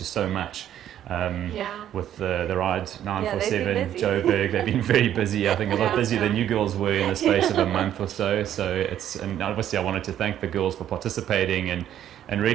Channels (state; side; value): quieter; left; 11.0 dB